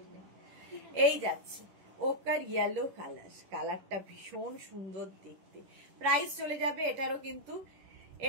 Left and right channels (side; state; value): left; late; 10 ms